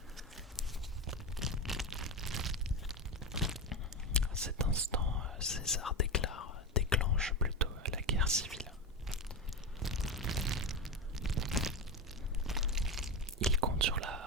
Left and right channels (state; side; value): normal; both; correlation 0.18